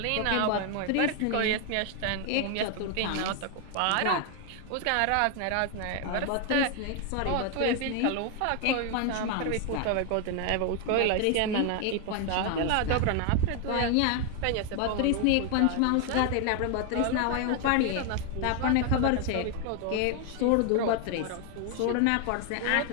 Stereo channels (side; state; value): both; different; correlation 0.00